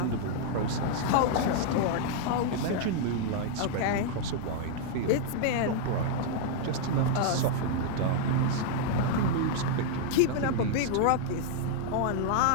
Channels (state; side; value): different; both; correlation -0.01